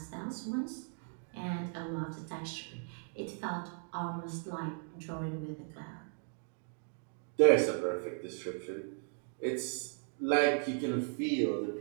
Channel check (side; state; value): left; silent; 53 dB below the other